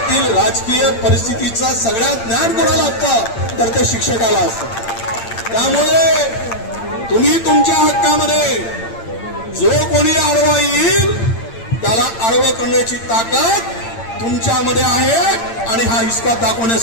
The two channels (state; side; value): late; right; 8.8 ms